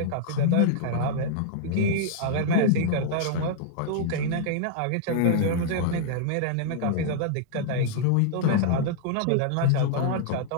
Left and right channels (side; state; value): both; different; correlation -0.01